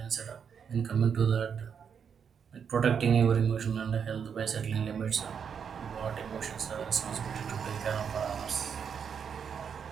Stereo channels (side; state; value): left; quieter; 7.1 dB